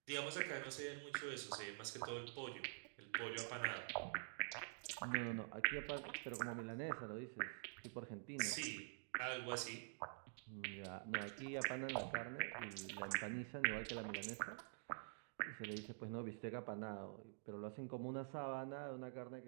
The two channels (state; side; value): silent; left; digital silence